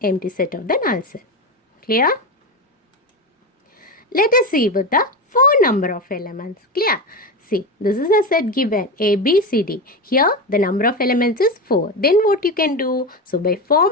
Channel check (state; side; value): normal; both; correlation 0.19